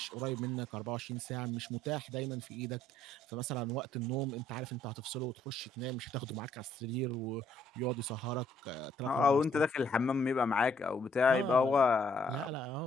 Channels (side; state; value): both; normal; correlation 0.66